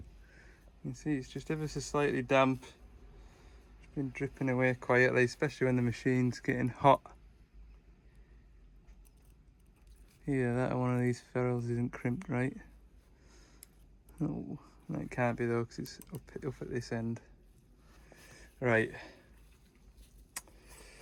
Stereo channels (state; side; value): identical; both; correlation 1.00